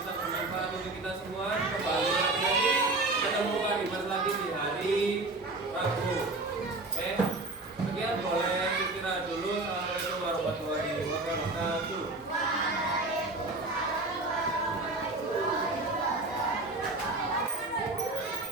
bermanfaat untuk kita semua. Kembali lagi ketemu Pak Dimas lagi di hari Rabu. Oke, sekian, boleh istirahat dulu. Assalamualaikum warahmatullahi wabarakatuh.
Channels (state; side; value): quieter; left; 3.1 dB